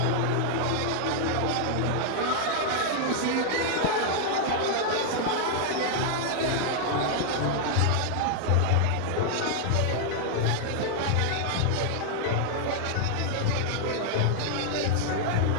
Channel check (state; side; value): different; both; correlation -0.01